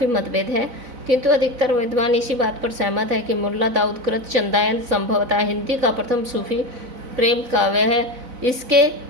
मतभेद है, किंतु अधिकतर विद्वान इसी बात पर सहमत है कि मुल्ला दाऊद कृत चंदायन संभवतः हिंदी का प्रथम सूफी प्रेम काव्य है।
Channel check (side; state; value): left; late; 4.0 ms